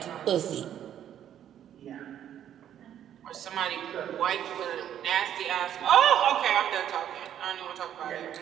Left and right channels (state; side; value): quieter; left; 10.3 dB